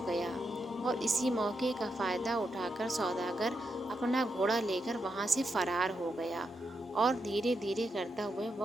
گیا۔ اور اسی موقع کا فائدہ اٹھا کر سوداگر اپنا گھوڑا لے کر وہاں سے فرار ہو گیا، اور دھیرے دھیرے کرتا ہوا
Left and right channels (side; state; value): both; normal; correlation 0.84